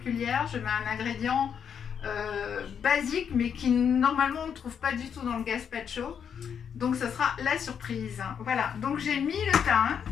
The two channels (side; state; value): right; quieter; 7.7 dB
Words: Je mets un ingrédient basique, mais qui normalement on ne trouve pas du tout dans le gazpacho. Donc ça sera la surprise. Voilà, donc j'ai mis le thym.